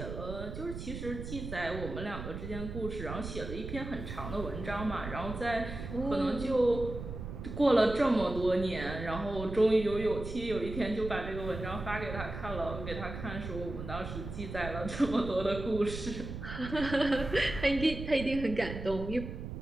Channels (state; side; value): noise; right; rumble, 8 dB below the sound